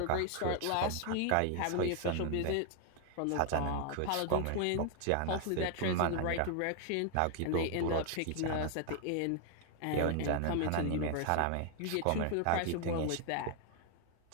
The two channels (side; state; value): both; different; correlation 0.00